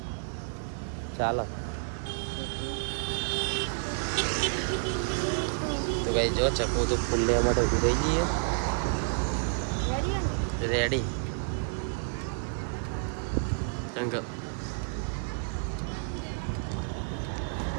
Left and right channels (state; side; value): silent; left; digital silence